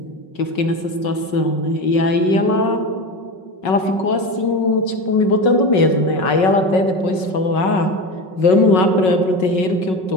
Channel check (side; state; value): right; late; 5.4 ms